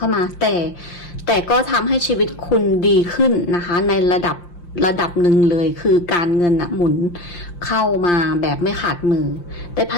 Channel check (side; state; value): right; late; 5.7 ms